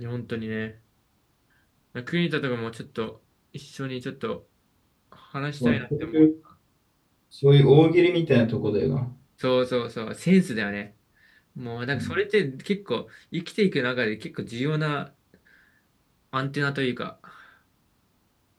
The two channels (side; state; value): both; identical; correlation 1.00